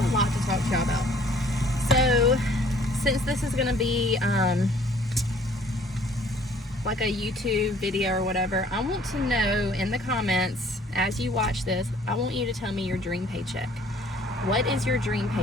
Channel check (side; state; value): both; normal; correlation 0.57